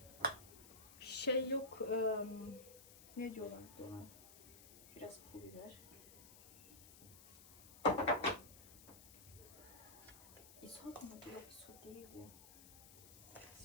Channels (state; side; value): noise; left; hiss, 17 dB below the sound